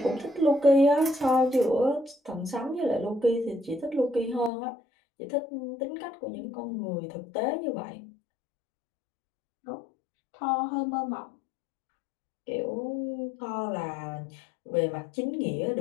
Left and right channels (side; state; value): right; drops out; at 4.5 s